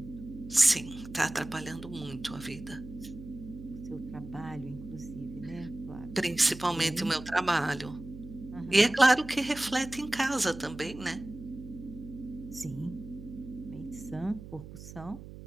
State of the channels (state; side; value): noise; right; hum, 14 dB below the sound